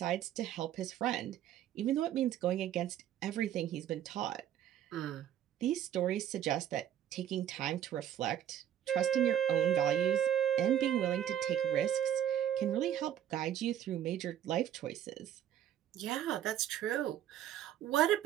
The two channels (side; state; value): left; quieter; 10.8 dB